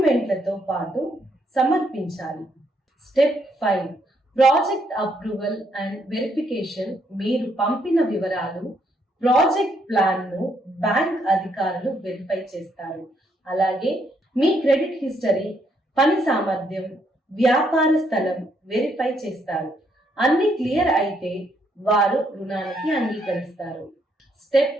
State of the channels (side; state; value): both; normal; correlation 0.73